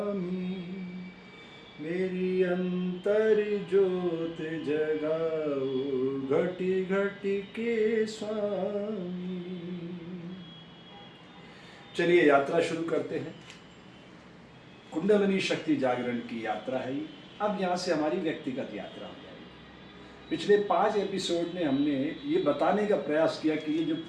मेरी अंतर ज्योत जगाओ घटी घटी के स्वामी। चलिए यात्रा शुरू करते हैं। कुंडलिनी शक्ति जागरण की यात्रा है ये। अब यहाँ से हमारी व्यक्तिगत यात्रा हो जाएगी। पिछले 5 एपिसोड में हमने ये बताने का प्रयास किया कि ये जो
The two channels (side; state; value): both; identical; correlation 1.00